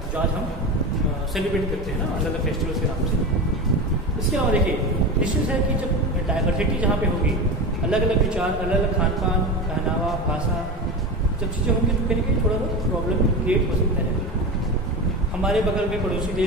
जो आज हम सेलिब्रेट करते हैं ना अलग अलग फेस्टिवल्स के नाम से। इसके अलावा देखिए, निश्चित है कि जब डाइवर्सिटी जहाँ पे होगी, अलग अलग विचार, अलग अलग खान पान, पहनावा, भाषा, जब चीज़ें होंगी तो कहीं थोड़ा बहुत प्रॉब्लम क्रिएट हो सकता है। हमारे बगल में पड़ोसी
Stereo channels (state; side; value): normal; both; correlation 0.24